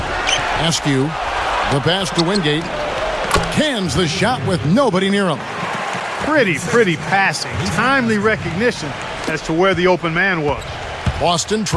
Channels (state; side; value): identical; both; correlation 1.00